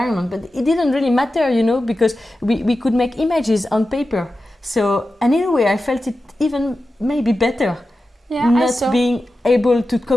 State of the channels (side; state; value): both; normal; correlation 0.93